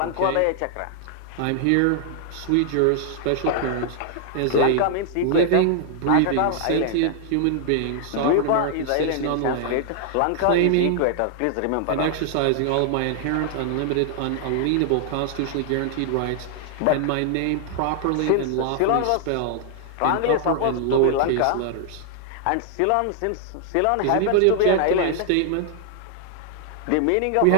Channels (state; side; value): different; both; correlation 0.00